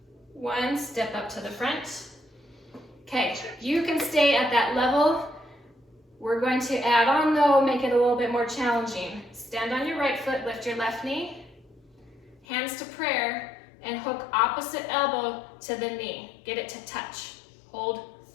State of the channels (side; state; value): right; drops out; at 12.5 s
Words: 1. Step up to the front. Okay, you can stay at that level. We're going to add on though, make it a little bit more challenging. Stand on your right foot, lift your left knee, hands to prayer, and hook opposite elbow to the knee. Get it to touch. Hold.